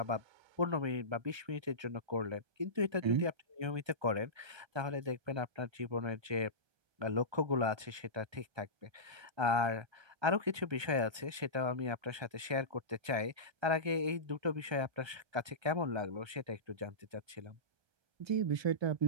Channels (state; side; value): late; left; 1.3 ms